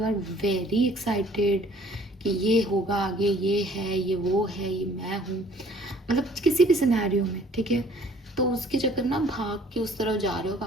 are very excited कि ये होगा आगे, ये है, ये वो है, ये मैं हूँ, मतलब किसी भी सिनेरियो में, ठीक है। तो उसके चक्कर ना भाग के उस तरफ जा रहे हो,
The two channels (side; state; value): both; normal; correlation 0.56